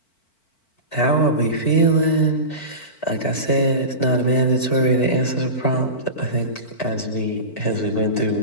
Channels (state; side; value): late; right; 4.5 ms